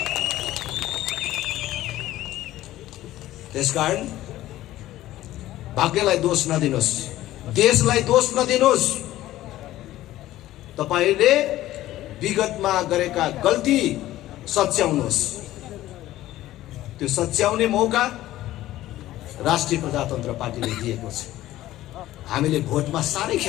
त्यसकारण भाग्यलाई दोष नदिनुहोस्, देशलाई दोष नदिनुहोस्। तपाईले विगतमा गरेका गल्ती सच्याउनुहोस्। त्यो सच्याउने मौका राष्ट्रिय प्रजातन्त्र पार्टीले दिएको छ। हामीले भोटमा साह्रै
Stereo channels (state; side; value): quieter; right; 15.0 dB